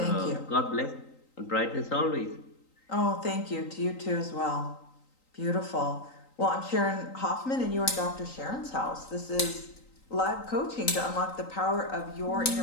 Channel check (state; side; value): late; right; 3.9 ms